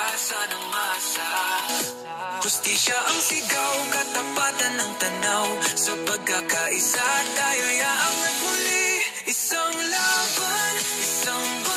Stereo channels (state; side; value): identical; both; correlation 1.00